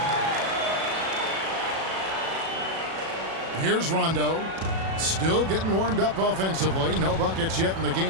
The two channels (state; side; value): late; left; 37 ms